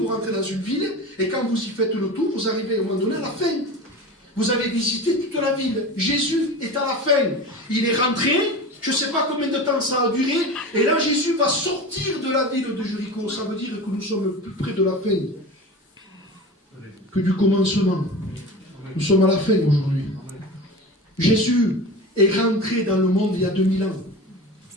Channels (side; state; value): both; normal; correlation 0.31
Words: rentrez dans une ville et quand vous y faites le tour, vous arrivez au moment donné à la fin. Vous avez visité toute la ville. Jésus est à la fin. Il est rentré, je ne sais pas combien de temps ça a duré, et là Jésus va sortir de la ville de Jéricho. Ça veut dire que nous sommes plus près de la fin que du commencement. Nous sommes à la fin aujourd'hui. Jésus est rentré dans le monde il y a 2000 ans.